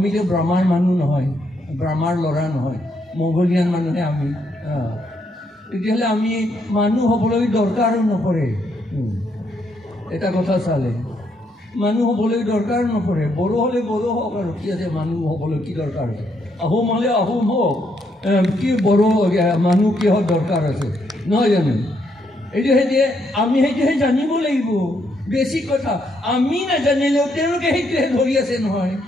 ব্ৰহ্মাৰ মানুহ নহয় ব্ৰহ্মাৰ ল'ৰা নহয় মংগোলিয়ান মানুহে আমি তেতিয়াহ'লে আমি মানুহ হ'বলৈ দৰকাৰো নপৰে এটা কথা চালে মানুহ হ'বলৈ দৰকাৰ নপৰে বড়ো হ'লে বড়ো হওক আৰু কি আছে মানুহ হ'বলৈ কি দৰকাৰ আছে আহোম হ'লে আহোম হওক কি বড়ো মানুহ কিহৰ দৰকাৰ আছে নহয় জানো এইটো সেইটোৱে আমি সেইটোহে জানিব লাগিব বেছি কথা আমি নাজানিলেও তেওঁলোকে সেইটোহে ধৰি আছে নহয়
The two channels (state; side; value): normal; both; correlation 0.75